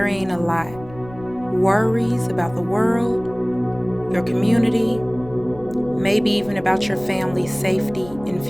a lot. Worries about the world, your community, maybe even about your family's safety and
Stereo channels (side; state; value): left; noise; rumble, 19 dB below the sound